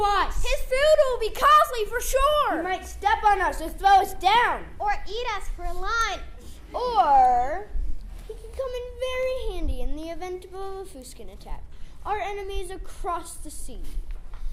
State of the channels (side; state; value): both; identical; correlation 1.00